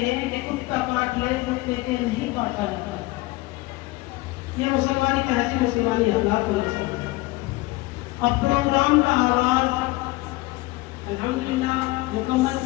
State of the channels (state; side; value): quieter; right; 20.5 dB